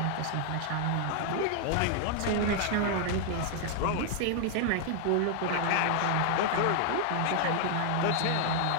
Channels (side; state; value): both; different; correlation 0.00